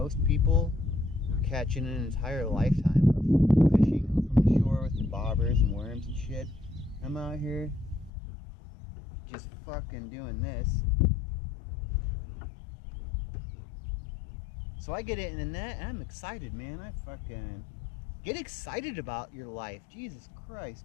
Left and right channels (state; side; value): drops out; right; at 8.1 s